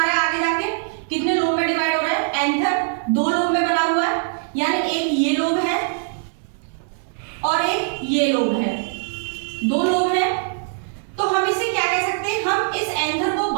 रहा है, आगे जाके कितने लोब में डिवाइड हो रहा है? एंथर दो लोब में बना हुआ है, यानी एक ये लोब है और एक ये लोब है, दो लोब है। तो हम इसे क्या कह सकते हैं? हम इस एंथर को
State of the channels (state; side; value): silent; left; digital silence